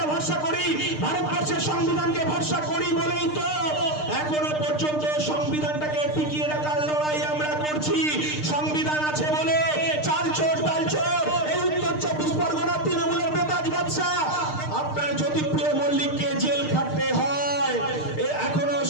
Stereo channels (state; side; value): late; right; 6.6 ms